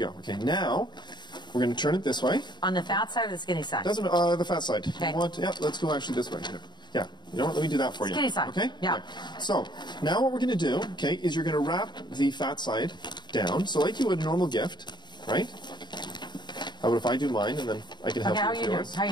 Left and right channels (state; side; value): late; right; 0.21 ms